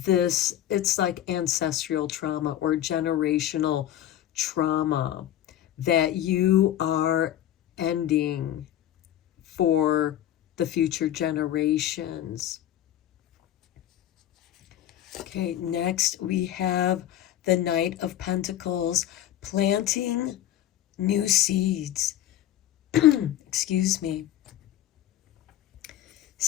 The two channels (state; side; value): quieter; right; 12.1 dB